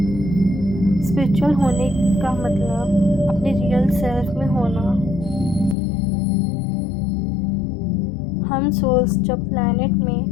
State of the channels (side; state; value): right; drops out; at 5.8 s